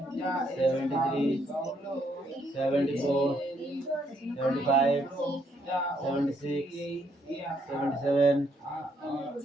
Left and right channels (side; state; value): both; normal; correlation 0.72